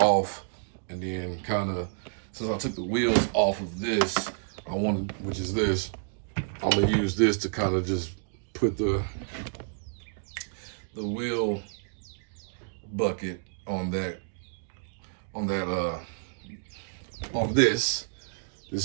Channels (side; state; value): left; silent; digital silence